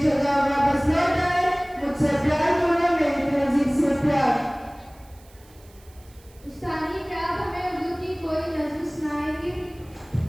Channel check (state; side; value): noise; right; hiss, 28 dB below the sound